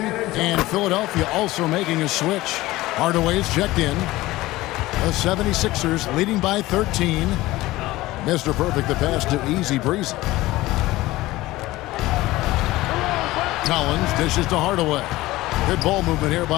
And Philadelphia also making a switch. Hardaway's checked in. The 76ers leading by 13. Mr. Perfect the pass to Easy Breezy. Collins dishes to Hardaway. Good ball movement here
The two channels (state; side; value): quieter; right; 18.1 dB